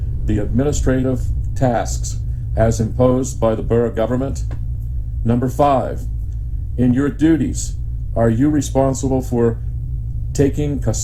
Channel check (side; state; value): both; identical; correlation 1.00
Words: the administrative tasks as imposed by the borough government? Number 5, in your duties, are you responsible for taking